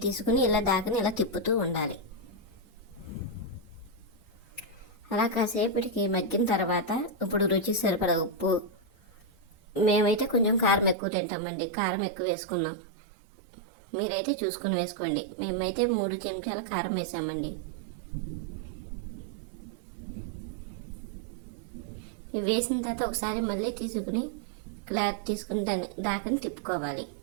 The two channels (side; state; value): left; drops out; at 11.0 s